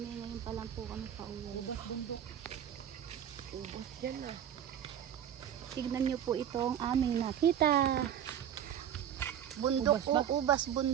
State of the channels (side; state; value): left; quieter; 9.7 dB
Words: Ngayon pa lang po kami pauwi. Ubas bundok. Ubas dyan na. Tignan nyo po itong aming nakita. Bundok Ubas o ubas